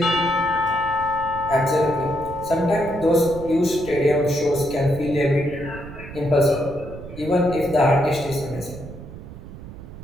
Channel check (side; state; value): right; noise; rumble, 14 dB below the sound